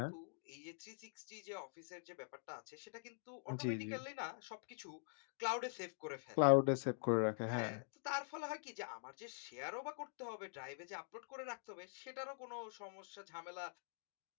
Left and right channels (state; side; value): silent; right; digital silence